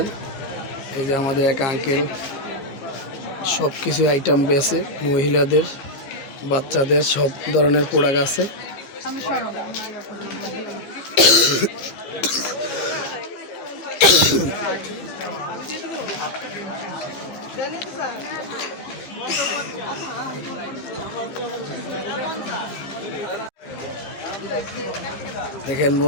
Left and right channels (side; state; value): right; late; 15 ms